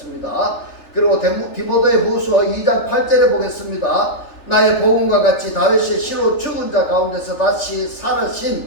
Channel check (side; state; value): right; late; 3.4 ms